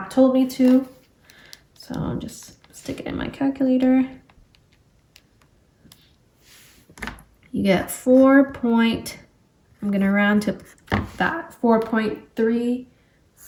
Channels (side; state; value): both; identical; correlation 1.00